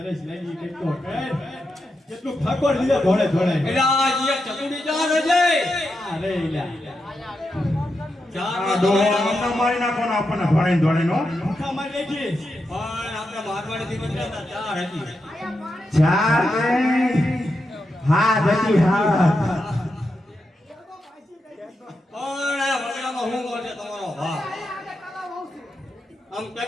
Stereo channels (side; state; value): both; normal; correlation 0.86